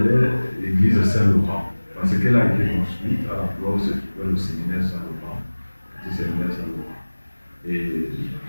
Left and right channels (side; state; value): both; inverted; correlation -1.00